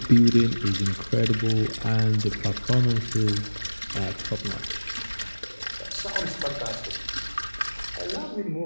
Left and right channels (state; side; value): inverted; both; correlation -1.00